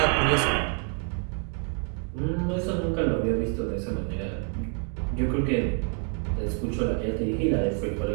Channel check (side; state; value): left; quieter; 39.3 dB